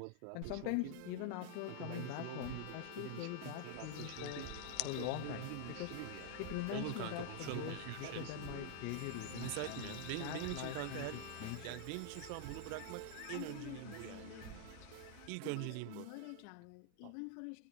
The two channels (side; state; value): both; different; correlation 0.00